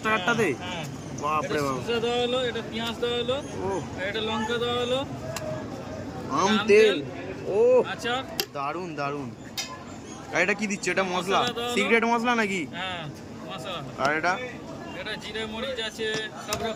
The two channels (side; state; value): both; identical; correlation 1.00